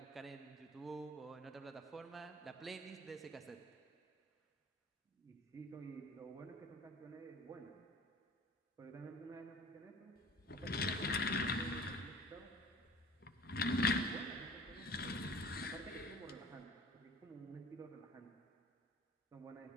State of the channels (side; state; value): both; normal; correlation 0.44